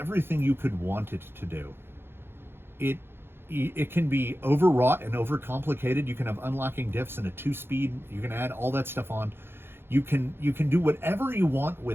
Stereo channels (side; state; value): left; late; 0.11 ms